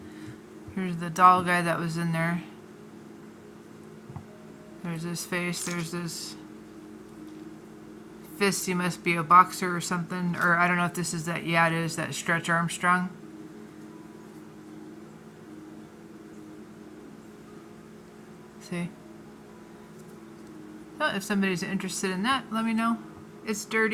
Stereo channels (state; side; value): identical; both; correlation 1.00